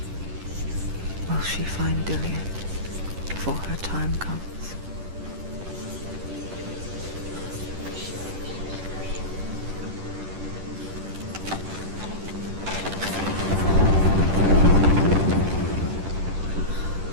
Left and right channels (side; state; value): left; late; 10 ms